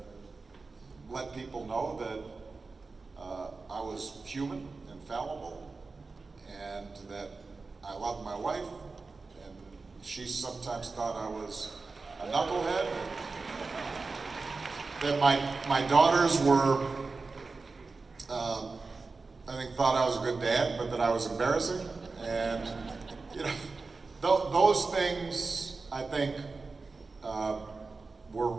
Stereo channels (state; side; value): quieter; left; 4.0 dB